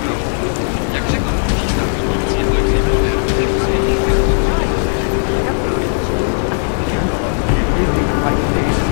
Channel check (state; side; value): silent; right; digital silence